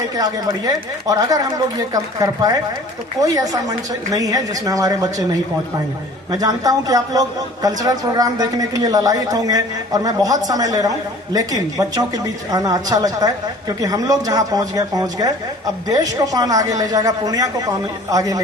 आगे बढ़िए, और अगर हम लोग ये कर पाए तो कोई ऐसा मंच नहीं है जिसमें हमारे बच्चे नहीं पहुंच पाएंगे। मैं जानता हूं कि आप लोग कल्चरल प्रोग्राम देखने के लिए ललायित होंगे और मैं बहुत समय ले रहा हूं, लेकिन बच्चों के बीच आना अच्छा लगता है, क्योंकि हम लोग जहां पहुंच गए। अब देश को कौन आगे ले जाएगा, पूर्णिया को कौन आगे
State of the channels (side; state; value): both; normal; correlation 0.48